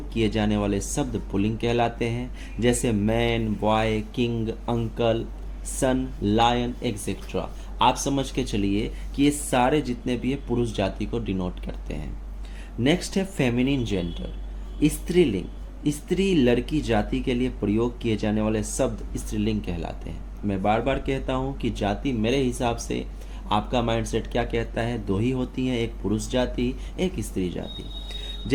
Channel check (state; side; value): identical; both; correlation 1.00